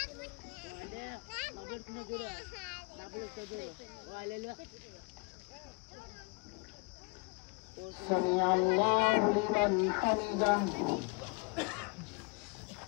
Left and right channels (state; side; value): quieter; right; 30.2 dB